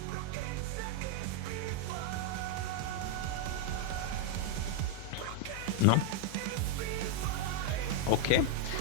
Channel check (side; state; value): both; different; correlation 0.00